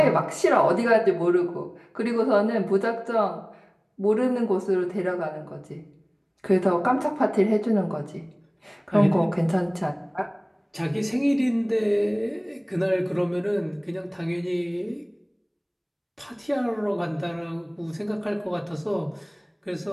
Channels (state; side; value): identical; both; correlation 1.00